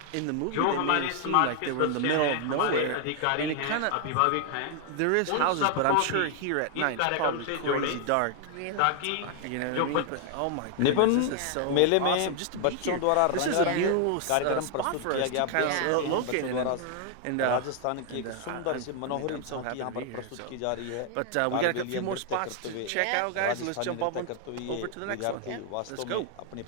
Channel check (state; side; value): different; both; correlation 0.00